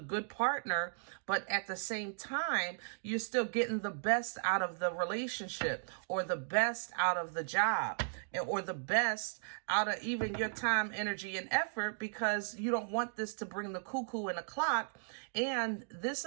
partner. But at the same time, you're still getting the best out of the relationship, or the best out of the job, or the best out of even your time, energy, and effort, because you don't want this to bring the cuckoo in the clock. And this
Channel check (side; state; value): left; silent; digital silence